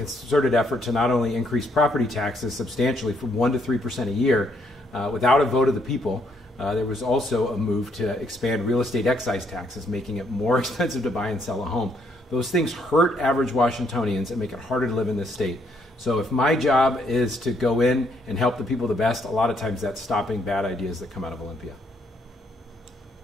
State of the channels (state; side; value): normal; both; correlation 0.72